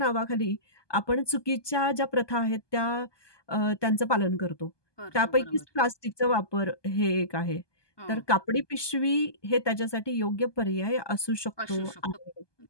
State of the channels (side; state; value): right; late; 1.2 ms